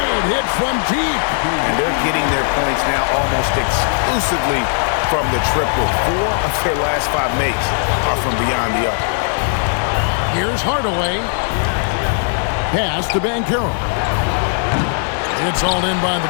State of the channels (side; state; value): right; silent; digital silence